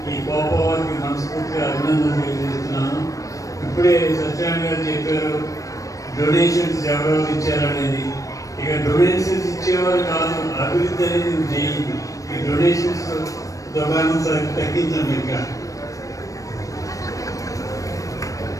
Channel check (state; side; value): late; right; 0.16 ms